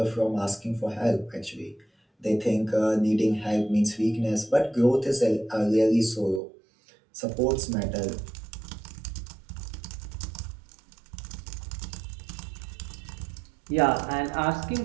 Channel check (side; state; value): left; drops out; at 6.4 s